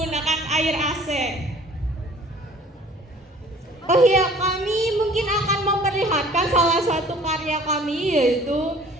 air AC. Oh iya, kami mungkin akan memperlihatkan salah satu karya kami, yaitu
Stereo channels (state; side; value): normal; both; correlation 0.51